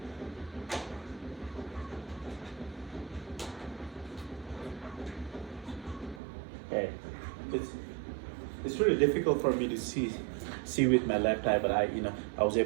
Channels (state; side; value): drops out; left; at 6.2 s